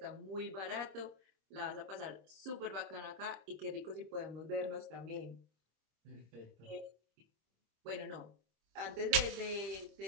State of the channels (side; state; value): left; late; 26 ms